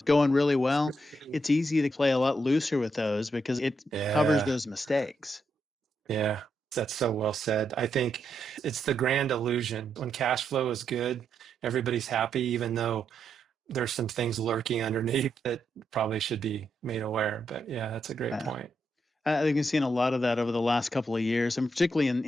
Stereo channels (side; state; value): both; normal; correlation 0.81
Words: going really well, it's easy to play a lot looser with those because it covers Yeah. those mistakes. Yeah. That's so well said. I think it's the grand illusion. When cash flow is good, everybody's happy, even though there's some things lurking underneath that probably should be made aware. But yeah, that's a great Uh, point. I think we've seen a lot of that over the last couple of years, and particularly